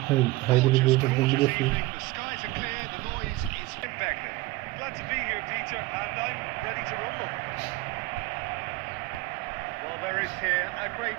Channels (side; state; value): left; quieter; 19.9 dB